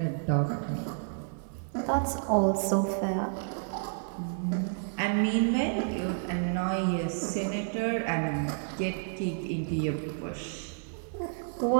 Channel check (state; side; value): silent; left; 56 dB below the other